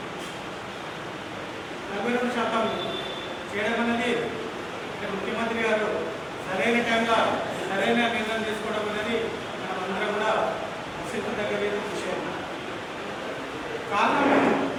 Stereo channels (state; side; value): identical; both; correlation 1.00